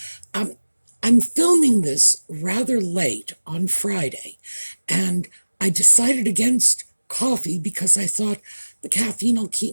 I'm filming this rather late on Friday, and I decided against coffee because I thought the caffeine will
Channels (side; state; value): both; inverted; correlation -1.00